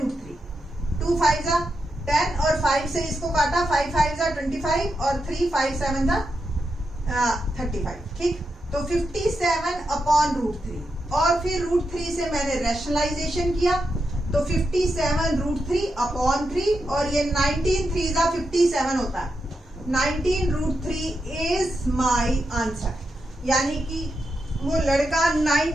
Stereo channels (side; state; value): both; normal; correlation 0.86